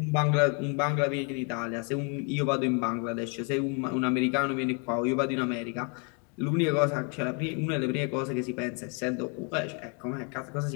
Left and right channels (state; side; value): quieter; right; 37.2 dB